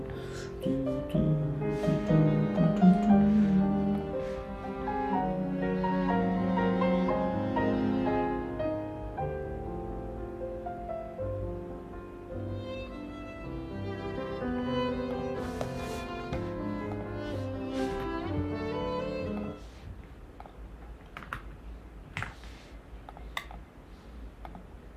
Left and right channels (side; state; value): both; identical; correlation 1.00